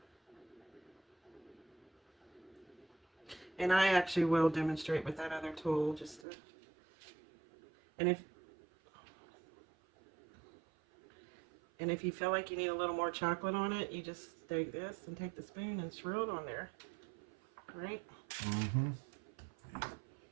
And I actually will demonstrate with that other tool just to, and if you feel like you need a little more chocolate on it, you just take this and take the spoon and swirl it on there. Right? Mm-hmm.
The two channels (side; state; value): left; drops out; at 6.2 s